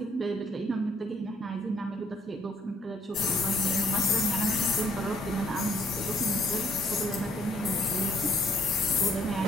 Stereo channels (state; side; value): normal; both; correlation 0.65